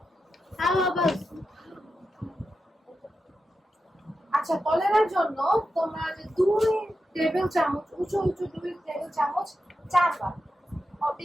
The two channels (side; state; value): both; normal; correlation 0.89